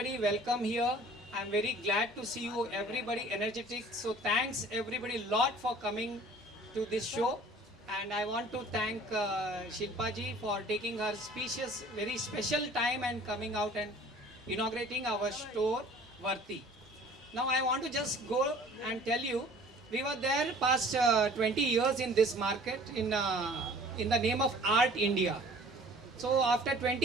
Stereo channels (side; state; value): both; normal; correlation 0.49